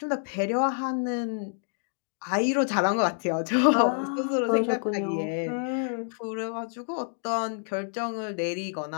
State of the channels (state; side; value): silent; right; digital silence